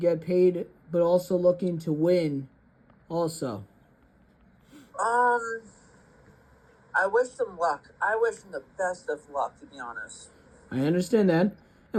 paid, but also looking to win also? I wish them luck. I wish them the best of luck, to be honest. I understand that.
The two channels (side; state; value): both; identical; correlation 1.00